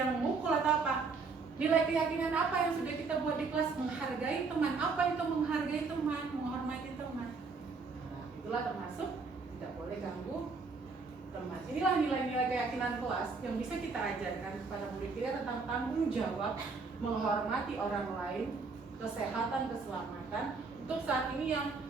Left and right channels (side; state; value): left; quieter; 4.5 dB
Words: memukul atau apa, nilai keyakinan apa yang sudah kita buat di kelas? Menghargai teman. Apa itu menghargai teman? Menghormati teman. Nah, itulah termasuk tidak boleh ganggu teman. Inilah nilai-nilai keyakinan kelas yang bisa kita ajarkan kepada murid kita tentang tanggung jawab, menghormati orang lain, kesehatan, keselamatan. Untuk saat ini yang